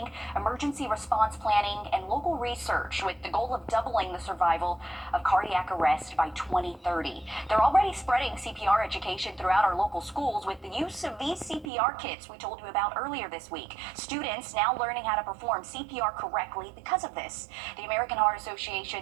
emergency response planning, and local research with the goal of doubling the survival of cardiac arrest by 2030. They're already spreading CPR education throughout our local schools with the use of these CPR kits we told you about earlier this week. Students now learning how to perform CPR correctly because of this. The American Heart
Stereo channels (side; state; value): left; drops out; at 11.7 s